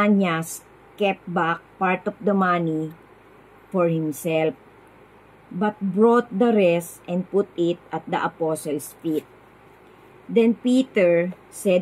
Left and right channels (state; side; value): identical; both; correlation 1.00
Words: kept back part of the money for himself, but brought the rest and put it at the apostles' feet. Then Peter